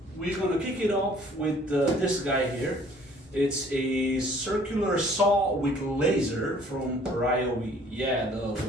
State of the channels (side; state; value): both; normal; correlation 0.56